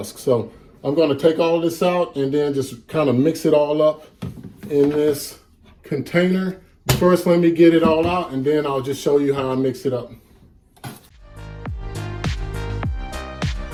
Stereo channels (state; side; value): identical; both; correlation 1.00